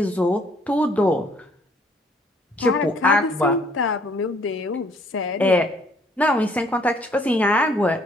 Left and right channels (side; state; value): both; normal; correlation 0.63